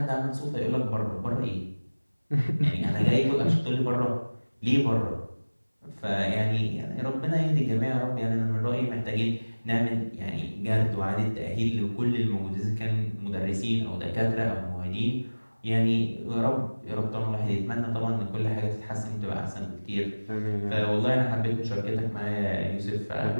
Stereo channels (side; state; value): both; inverted; correlation -1.00